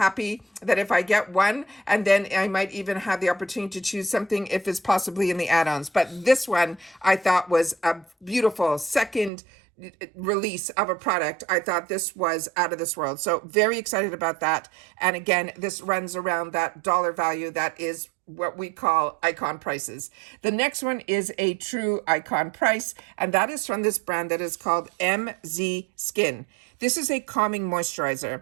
that if I get one, and then I might even have the opportunity to choose something if it's possibly in the add-ons. But this one I thought was a beautiful second release of a product. I thought this was out of this world. So very excited about that. And again, this runs around that dollar value that is what we call icon prices. The next one is a true icon price, and that is from this brand that is called MZ Skin. This is a calming moisturizer.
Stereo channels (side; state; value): left; drops out; at 9.3 s